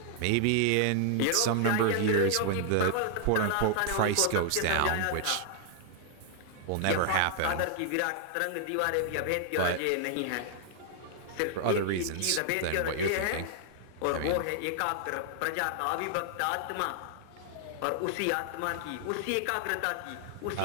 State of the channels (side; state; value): both; different; correlation 0.00